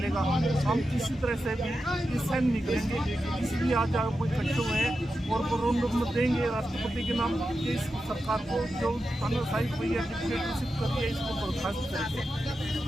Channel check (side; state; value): both; normal; correlation 0.90